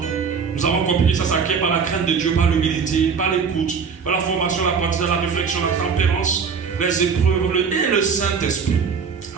nous avons compris que ça s'acquiert par la crainte de Dieu, par l'humilité, par l'écoute, par la formation, la pratique, la réflexion, la tempérance, les épreuves et le Saint-Esprit.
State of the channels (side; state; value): left; quieter; 5.9 dB